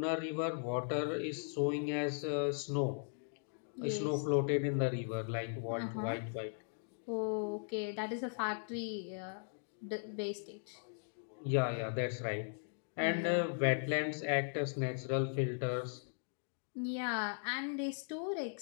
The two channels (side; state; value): right; silent; digital silence